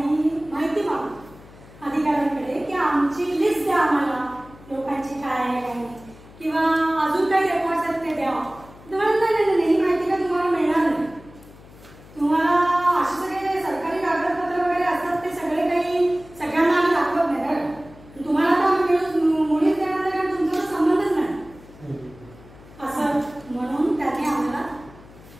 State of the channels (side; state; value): left; noise; hum, 21 dB below the sound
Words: माहिती मागतो अधिकाऱ्यांकडे की आमची लिस्ट द्या आम्हाला लोकांची काय आहे काय नाही किंवा अजून काही रेकॉर्ड्स आहेत ते द्या.